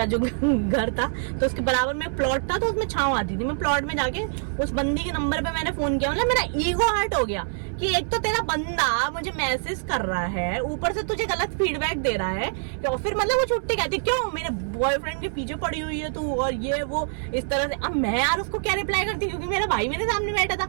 जो घर था, तो उसके बराबर में प्लॉट था, तो उसमें छांव आती थी। मैं प्लॉट में जाके उस बंदी के नंबर पे मैंने फोन किया। मतलब मेरा ईगो हर्ट हो गया कि एक तो तेरा बंदा मुझे मैसेज कर रहा है, ऊपर से तुझे गलत फीडबैक दे रहा है, और फिर मतलब वो छुट्टी कहती क्यों मेरे बॉयफ्रेंड के पीछे पड़ी हुई है तू, और ये वो इस तरह से। अब मैं यार उसको क्या रिप्लाई करती, क्योंकि मेरा भाई मेरे सामने बैठा था,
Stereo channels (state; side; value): silent; left; 58 dB below the other